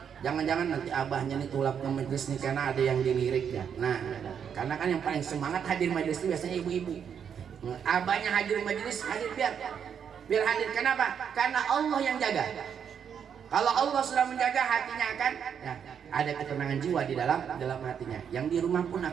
Jangan-jangan nanti abahnya nih tulap ke majelis nih karena ada yang dilirik ya. Nah, karena kan yang paling semangat hadir majelis itu biasanya ibu-ibu. Abahnya hadir majelis, hadir biar hadir. Kenapa? Karena Allah yang jaga. Kalau Allah sudah menjaga, hatinya akan ya, ada ketenangan jiwa di dalam hatinya. Yang di rumah pun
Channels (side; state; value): left; quieter; 7.8 dB